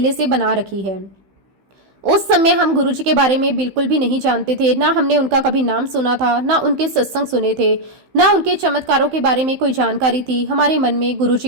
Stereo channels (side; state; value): left; late; 15 ms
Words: से बना रखी है। उस समय हम गुरुजी के बारे में बिल्कुल भी नहीं जानते थे, ना हमने उनका कभी नाम सुना था, ना उनके सत्संग सुने थे, ना उनके चमत्कारों के बारे में कोई जानकारी थी। हमारे मन में